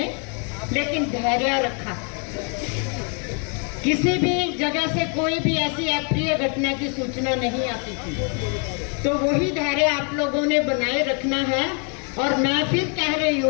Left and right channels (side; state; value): right; quieter; 38.5 dB